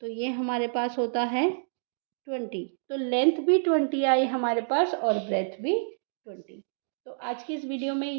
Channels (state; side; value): silent; left; digital silence